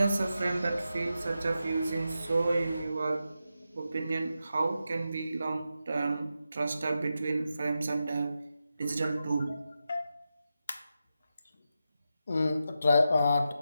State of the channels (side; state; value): both; inverted; correlation -0.89